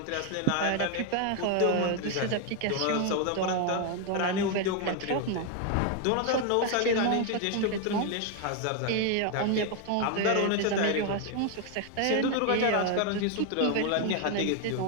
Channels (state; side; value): different; both; correlation 0.01